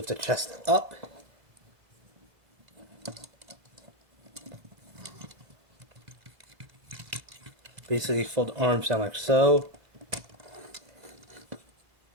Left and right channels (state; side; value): late; left; 2.0 ms